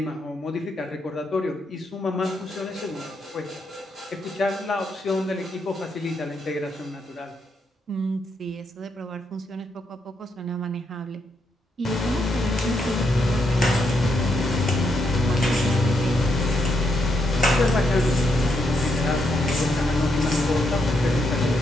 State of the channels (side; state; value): both; normal; correlation 0.79